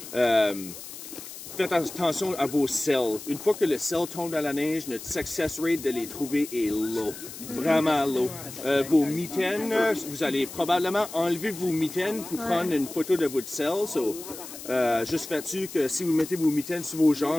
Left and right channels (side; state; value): left; noise; hiss, 13 dB below the sound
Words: Faites attention à vos selles. Une fois que le sel tombe dans la neige, notre success rate de les trouver est low. Vraiment low. Vos mitaines, vous allez probablement enlever vos mitaines pour prendre une photo de votre sel. Juste faites-tu que si vous mettez vos mitaines sur vos